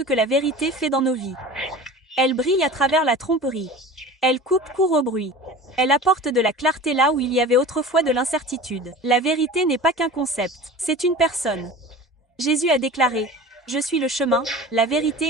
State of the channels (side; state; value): both; normal; correlation 0.37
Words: que la vérité fait dans nos vies. Elle brille à travers la tromperie. Elle coupe court au bruit. Elle apporte de la clarté là où il y avait autrefois de l'incertitude. La vérité n'est pas qu'un concept, c'est une personne. Jésus a déclaré « Je suis le chemin, la